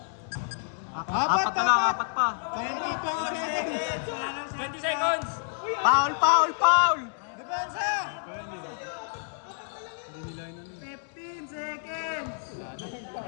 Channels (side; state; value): right; silent; digital silence